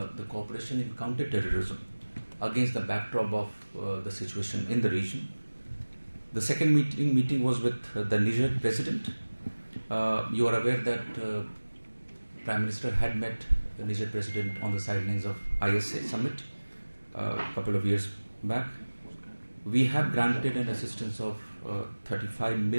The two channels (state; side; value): inverted; both; correlation -1.00